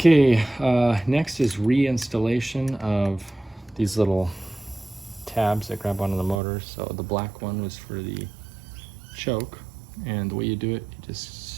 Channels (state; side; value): drops out; left; at 6.4 s